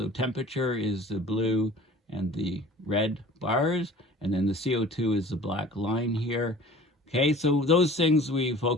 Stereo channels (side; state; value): both; normal; correlation 0.45